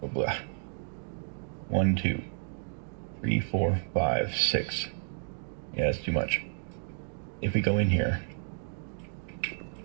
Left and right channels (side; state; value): left; silent; digital silence